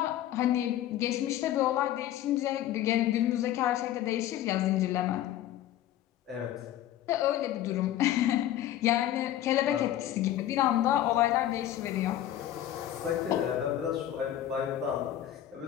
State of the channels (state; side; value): quieter; right; 12.5 dB